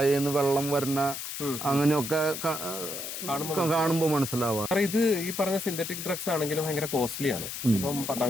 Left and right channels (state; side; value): noise; left; hiss, 6 dB below the sound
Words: വെള്ളം വരുന്ന അങ്ങനെയൊക്കെ കാണുമ്പോൾ മനസ്സിലാവുക. ഇത് ഈ പറഞ്ഞ സിന്തറ്റിക് ഡ്രഗ്സ് ആണെങ്കിലും ഭയങ്കര കോസ്റ്റ്ലി ആണ്. ഇപ്പം 10ാം